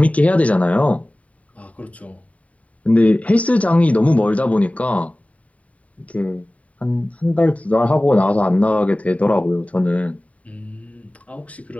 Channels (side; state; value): right; late; 0.068 ms